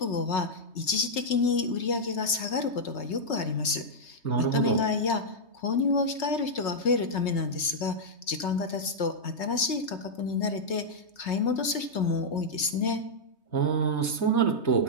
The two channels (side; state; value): right; late; 3.2 ms